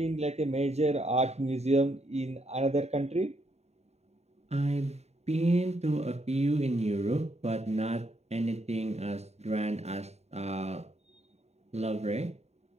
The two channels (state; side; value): late; left; 0.31 ms